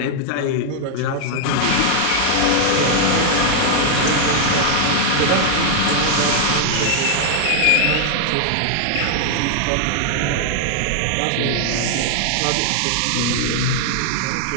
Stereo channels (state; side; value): different; both; correlation 0.00